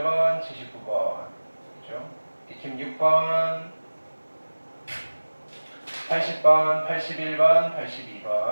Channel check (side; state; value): both; inverted; correlation -1.00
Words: 79번. 그죠? 익힘 6번, 80번, 81번,